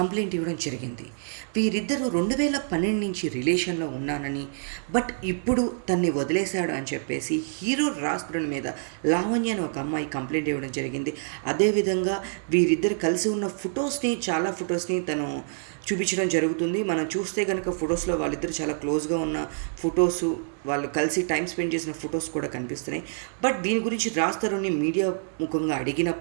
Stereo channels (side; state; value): left; silent; 60 dB below the other